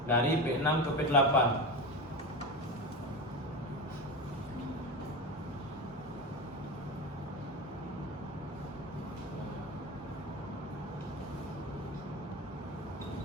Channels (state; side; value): normal; both; correlation 0.23